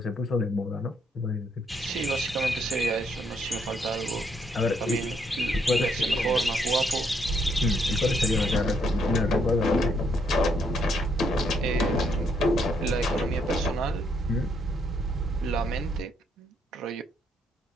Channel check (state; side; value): normal; both; correlation 0.73